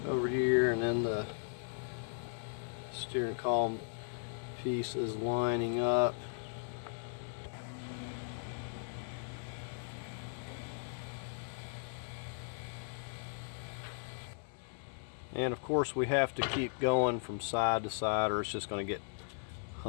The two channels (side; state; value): right; silent; digital silence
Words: over here, and then the steering column pieces lining up. And of course we have to keep going from side to side or it's just going to get